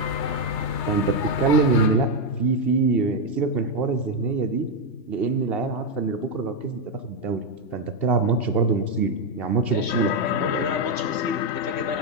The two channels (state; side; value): late; right; 3.3 ms